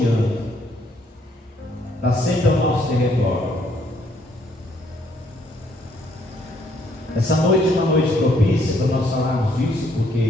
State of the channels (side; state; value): both; normal; correlation 0.68